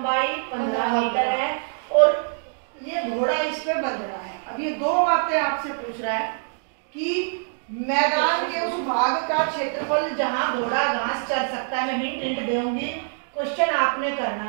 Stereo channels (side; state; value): left; silent; digital silence